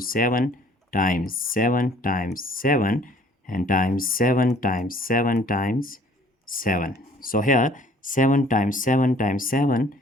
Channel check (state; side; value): normal; both; correlation 0.55